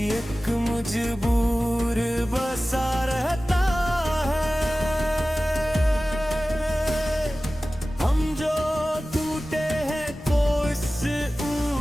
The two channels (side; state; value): both; normal; correlation 0.97